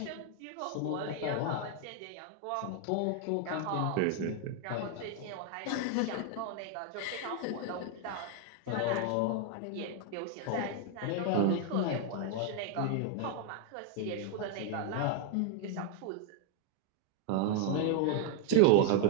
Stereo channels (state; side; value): different; both; correlation 0.00